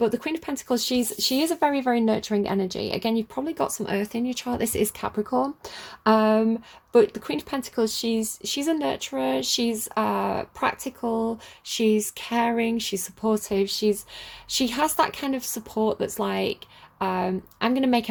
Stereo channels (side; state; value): both; identical; correlation 1.00